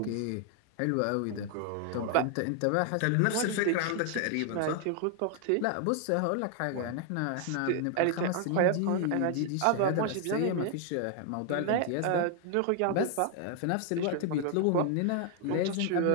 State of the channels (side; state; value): both; different; correlation 0.00